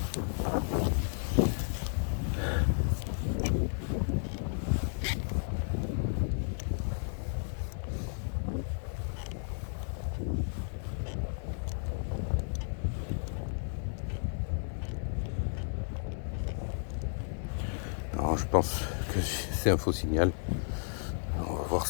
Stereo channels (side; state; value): right; silent; digital silence